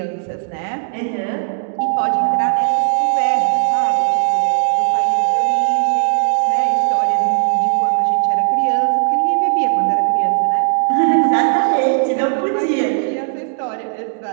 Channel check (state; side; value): silent; left; digital silence